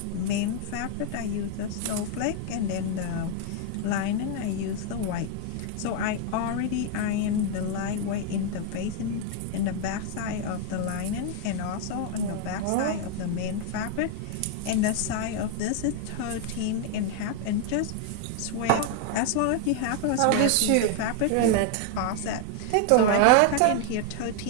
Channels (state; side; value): different; both; correlation 0.00